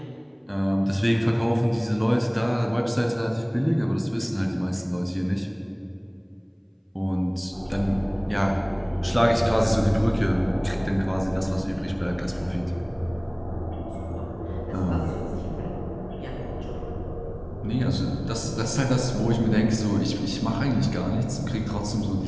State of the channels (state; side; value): identical; both; correlation 1.00